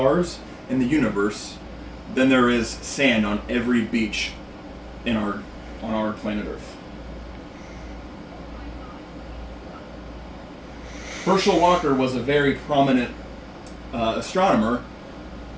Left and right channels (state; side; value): identical; both; correlation 1.00